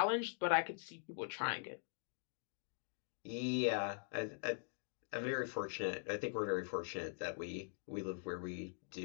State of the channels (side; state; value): right; silent; digital silence